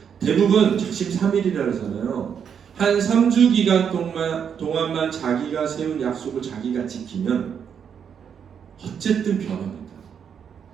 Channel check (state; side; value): quieter; left; 7.6 dB